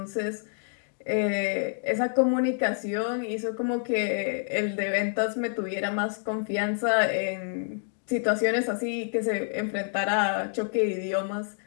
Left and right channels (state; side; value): silent; right; digital silence